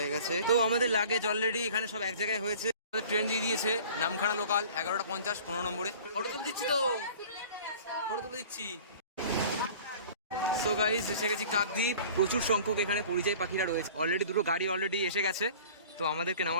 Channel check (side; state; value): both; inverted; correlation -0.45